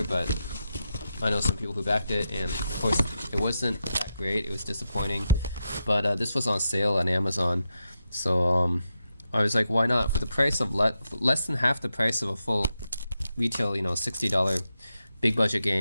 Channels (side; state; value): both; inverted; correlation -0.86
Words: but I know some people who backed it, and of course it wasn't that great. It was disappointing, but this was on sale on Amazon, so I was like, why not? For the price of less than half the price of a full retail, $60 big budget